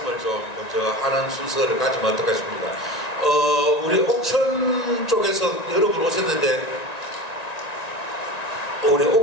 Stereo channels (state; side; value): late; right; 1.9 ms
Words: 좀 먼저 하는 순서를 가지면 어떨까 싶습니다. 우리 옥천 쪽에서 여러분 오셨는데, 우리